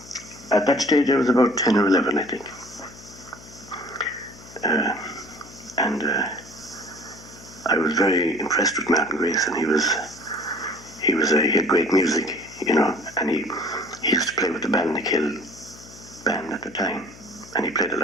At that stage I was about 10 or 11, I think. I was very impressed with Martin Grace, and he had great music, you know, and he used to play with the Balnakill band at the time, and he played a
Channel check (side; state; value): left; noise; hum, 20 dB below the sound